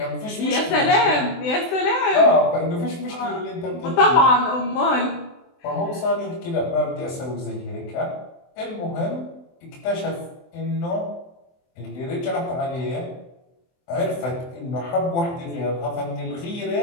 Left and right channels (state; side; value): late; right; 23 ms